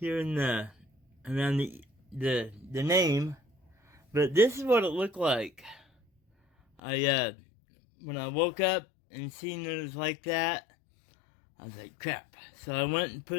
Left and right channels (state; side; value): drops out; right; at 6.8 s